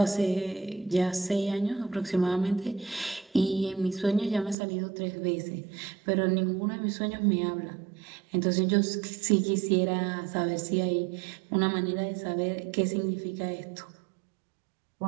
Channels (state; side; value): drops out; left; at 4.5 s